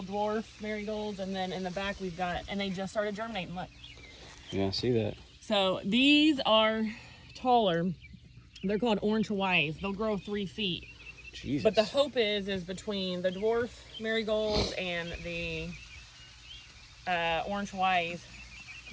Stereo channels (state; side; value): identical; both; correlation 1.00